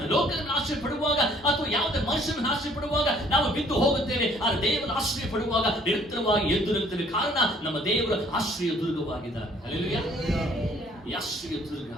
ಲೋಕದ ಮೇಲೆ ಆಶ್ರಯ ಪಡುವಾಗ, ಅಥವಾ ಯಾವುದೇ ಮನುಷ್ಯನ ಮೇಲೆ ಆಶ್ರಯ ಪಡುವಾಗ ನಾವು ಬಿದ್ದು ಹೋಗುತ್ತೇವೆ. ಆದರೆ ದೇವರ ಆಶ್ರಯ ಪಡುವಾಗ ನಿರಂತರವಾಗಿ ಎದ್ದು ನಿಲ್ತೇವೆ. ಕಾರಣ ನಮ್ಮ ದೇವರ ಆಶ್ರಯ ದುರ್ಗವಾಗಿದ್ದಾರೆ. ಹಲ್ಲೆಲೂಯಾ. ಈ ಆಶ್ರಯ ದುರ್ಗ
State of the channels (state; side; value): normal; both; correlation 0.59